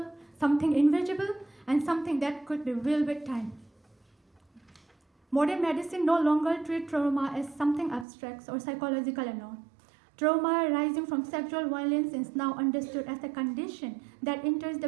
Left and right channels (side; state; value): left; drops out; at 8.1 s